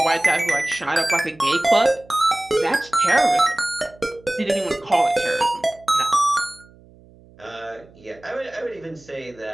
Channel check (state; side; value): noise; right; hum, 26 dB below the sound